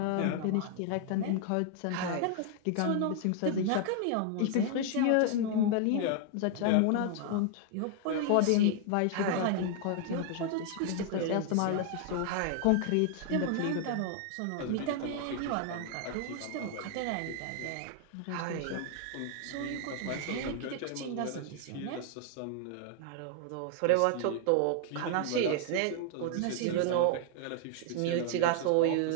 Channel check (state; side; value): different; both; correlation 0.00